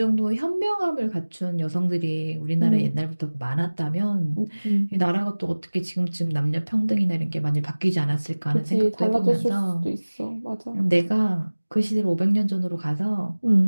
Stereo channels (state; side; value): inverted; both; correlation -1.00